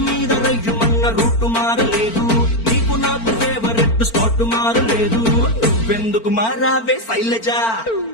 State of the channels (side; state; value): right; late; 4.4 ms